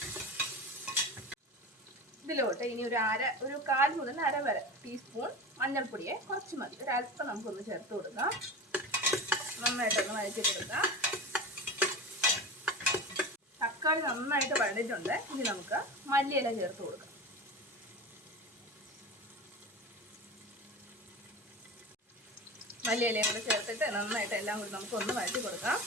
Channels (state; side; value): normal; both; correlation 0.29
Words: ഇതിലോട്ട് ഇനി ഒരു 1/4 മുതൽ അര വരെ ടീസ്പൂൺ മഞ്ഞൾപ്പൊടിയെ കുറച്ച് മതി, ഒരല്പം നമുക്കൊന്ന് ചേർത്ത് കൊടുക്കാം. നന്നായിട്ടൊന്ന് വഴറ്റി കൊടുക്കാം. തക്കാളി നന്നായിട്ട് വഴണ്ടിട്ടുണ്ട്. ഇനി നമുക്ക് മല്ലിയില ചേർത്ത് കൊടുക്കാം. മല്ലിയിലയും കൂടെ ചേർത്തിട്ട് നന്നായിട്ട് എല്ലാം കൂടി നമുക്കൊന്ന് വഴറ്റി കൊടുക്കാം.